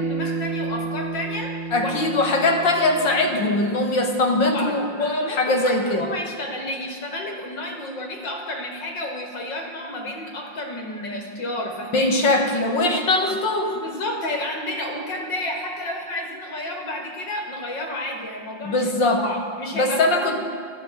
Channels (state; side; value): late; right; 5.6 ms